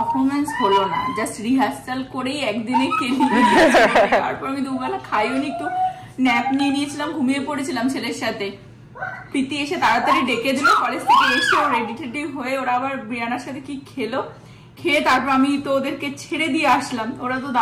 হলো না, জাস্ট রিহার্সাল করেই একদিনে খেলি। তারপর আমি দুবেলা খাইও নি, একটু ন্যাপ নিয়ে নিয়েছিলাম, ঘুমিয়ে পড়েছিলাম ছেলের সাথে। প্রীতি এসে তাড়াতাড়ি ডেকে দিল কলেজ থেকে এসে, ও রেডি টেডি হয়ে ওরা আবার ব্রিয়ানার সাথে কি খেলো, খেয়ে তারপর আমি তো ওদেরকে ছেড়ে দিয়ে আসলাম। ওরা তো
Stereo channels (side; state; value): both; identical; correlation 1.00